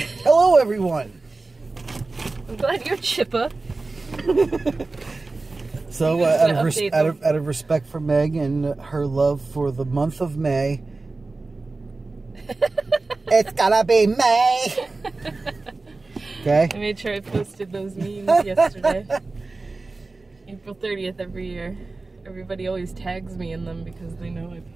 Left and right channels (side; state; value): left; quieter; 3.5 dB